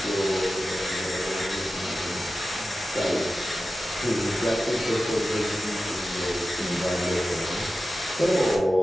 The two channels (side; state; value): both; normal; correlation 0.93